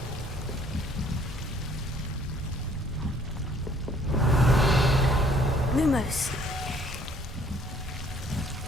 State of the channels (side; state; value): both; normal; correlation 0.60